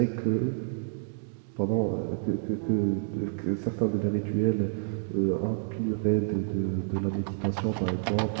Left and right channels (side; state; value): left; silent; digital silence